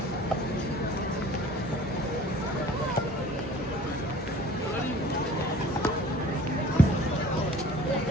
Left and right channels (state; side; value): normal; both; correlation 0.48